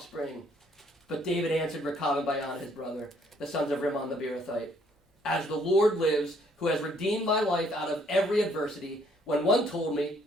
But David answered Rechab and Baana his brother, the sons of Rimmon the Beerothite, "As the Lord lives, who has redeemed my life out of every adversity, when one told me,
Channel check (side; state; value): both; normal; correlation 0.65